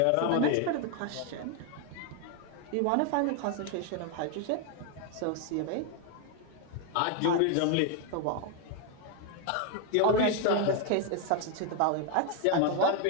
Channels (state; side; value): different; both; correlation 0.01